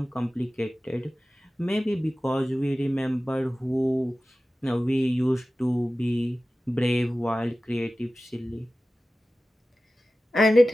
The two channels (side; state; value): both; normal; correlation 0.96